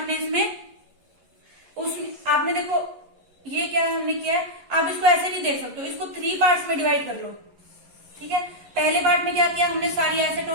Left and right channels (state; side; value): late; left; 11 ms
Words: इसमें, उसमें आपने देखो ये क्या हमने किया है, आप इसको ऐसे नहीं देख सकते हो, इसको 3 पार्ट्स में डिवाइड कर लो। ठीक है, पहले पार्ट में क्या किया हमने, सारी एसेट